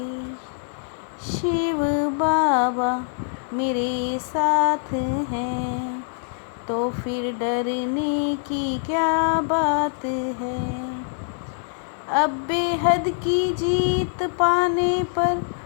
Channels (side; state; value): right; silent; digital silence